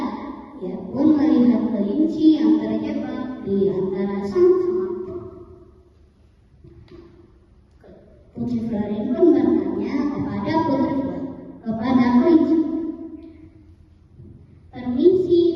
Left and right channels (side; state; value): both; identical; correlation 1.00